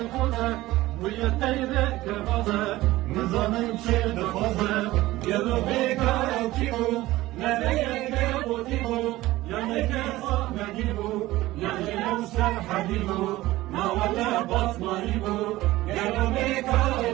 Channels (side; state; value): left; quieter; 17.4 dB